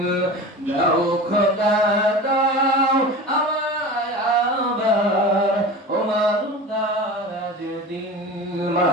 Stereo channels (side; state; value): both; normal; correlation 0.33